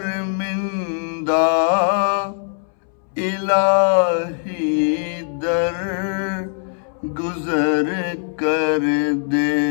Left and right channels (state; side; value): silent; right; 65 dB below the other